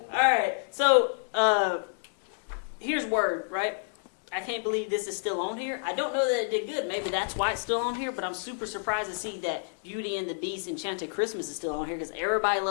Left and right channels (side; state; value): right; silent; digital silence